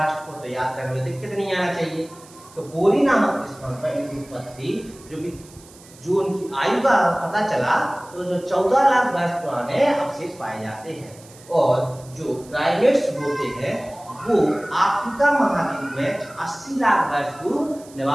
को, तो याद करने में दिक्कत नहीं आना चाहिए। तो बोरी नामक स्थान पर इनकी उत्पत्ति जो उनकी आयु का पता चला तो जो 14 लाख वर्ष पुराने अवशेष पाए जाते हैं। और जो प्राइमेट्स होते हैं वो अफ्रीका महाद्वीप में 80 लाख वर्ष पूर्व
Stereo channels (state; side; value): noise; right; hiss, 23 dB below the sound